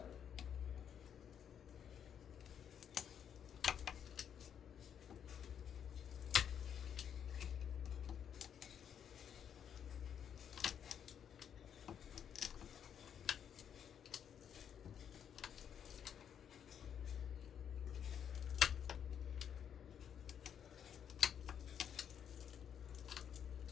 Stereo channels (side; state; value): right; quieter; 8.5 dB